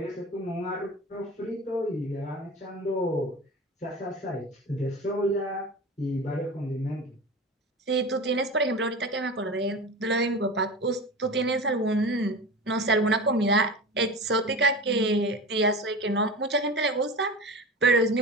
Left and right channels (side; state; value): both; normal; correlation 0.30